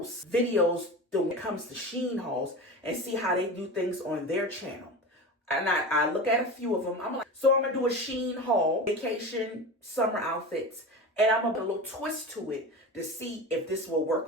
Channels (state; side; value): normal; both; correlation 0.28